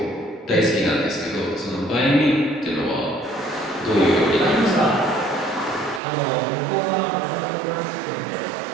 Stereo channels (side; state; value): left; drops out; at 6.0 s